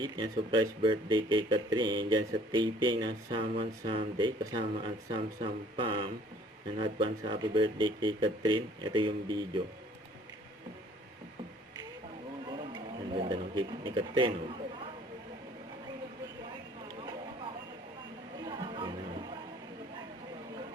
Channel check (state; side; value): normal; both; correlation 0.56